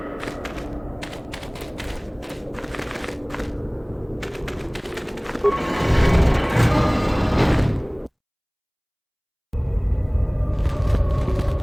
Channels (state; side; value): identical; both; correlation 1.00